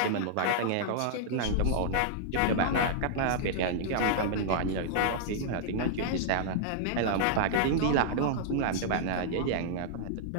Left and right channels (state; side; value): different; both; correlation -0.02